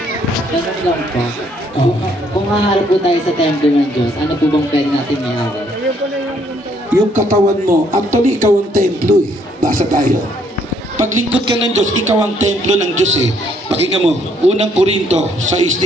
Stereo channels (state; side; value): normal; both; correlation 0.67